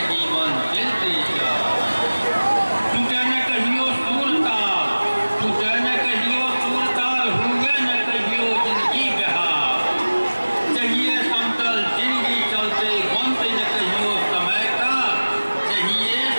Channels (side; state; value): both; inverted; correlation -1.00